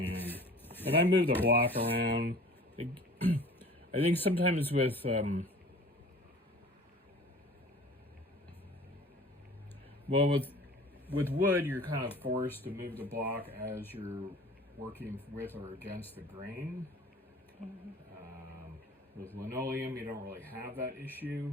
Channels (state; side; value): normal; both; correlation 0.45